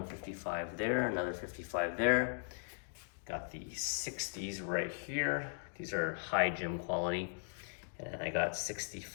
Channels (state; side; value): silent; right; digital silence